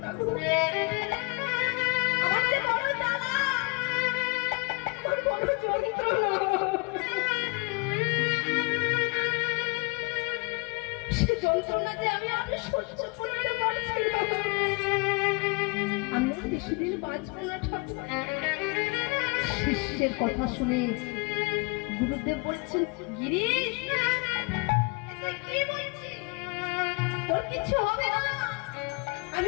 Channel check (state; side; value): quieter; right; 29.1 dB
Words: না গো। আমার যে বড় জ্বালা, আমার বড় যন্ত্রণা, সে যন্ত্রণা যে আমি আর সহ্য করতে পারছি না। আমি আর বেশি দিন বাঁচবো না ঠাকুর। শিষ্যের কথা শুনে গুরুদেব বলছেন, গিরিশ কি বলছিস? তোর কিছু হবে না।